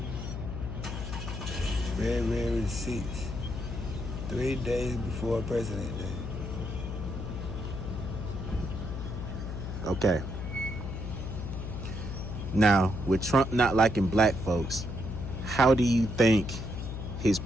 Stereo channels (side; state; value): left; noise; hum, 6 dB below the sound